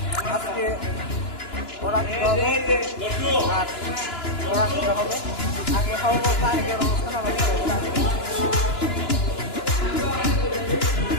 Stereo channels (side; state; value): right; late; 2.9 ms